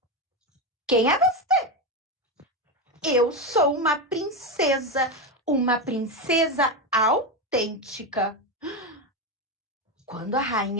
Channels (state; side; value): normal; both; correlation 0.13